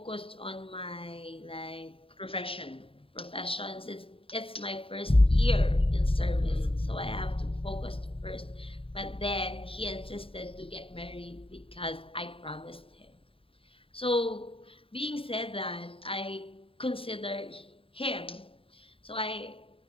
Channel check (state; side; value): late; right; 0.27 ms